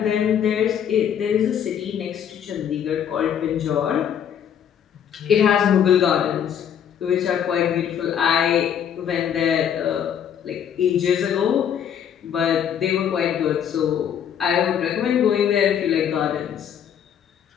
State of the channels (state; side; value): quieter; right; 8.8 dB